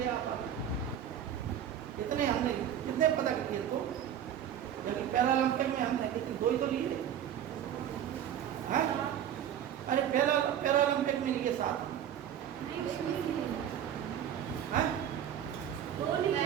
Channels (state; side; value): quieter; left; 9.8 dB